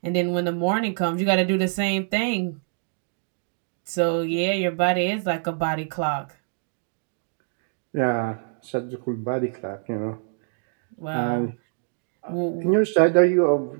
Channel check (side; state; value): left; silent; digital silence